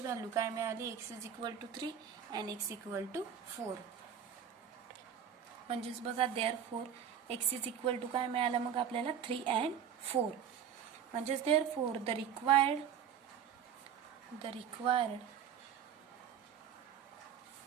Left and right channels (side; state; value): left; quieter; 8.4 dB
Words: व्हॅल्यू काय मिळाली, x is equal to 3 and x equal to 4. म्हणजेच बघा therefore x is equal to काय मिळालं मग आपल्याला 3 अँड 4. म्हणजेच therefore the required